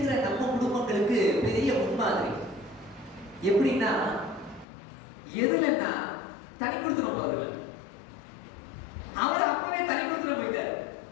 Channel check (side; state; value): right; drops out; at 4.7 s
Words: நம்ம குடும்பங்களுக்கு பெரிய முன்மாதிரி. எப்படின்னா, எதுலன்னா தனி கொடுத்துரும் அவர்கள். அவர் அப்பவே தனி கொடுத்துட்டு போயிட்டார்,